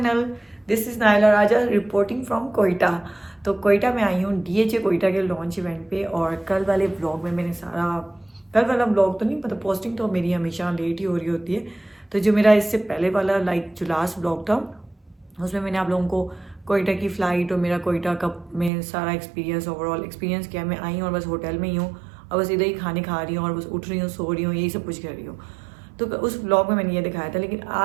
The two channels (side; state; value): left; drops out; at 18.7 s